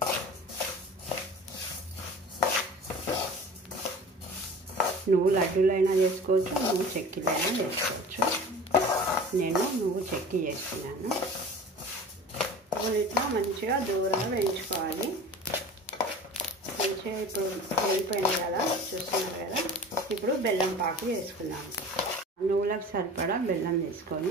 నువ్వు లడ్డూలైనా చేసుకోవచ్చు, నువ్వు చెక్కీలైనా చేసుకోవచ్చు. నేను నువ్వు చెక్కీ చేస్తున్నాను. నువ్వులు ఇట్లా మంచిగా దూరంగా వేయించుకోవాలి. మంచిగా ఇప్పుడు వేగిపోయింది కదా, చూస్తున్నారు కదా. ఇప్పుడు బెల్లం పాకు వేసుకున్నాము. నువ్వులకు సరిపడా బెల్లం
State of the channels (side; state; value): both; normal; correlation 0.39